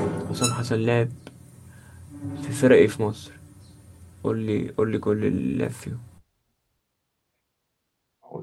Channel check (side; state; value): both; identical; correlation 1.00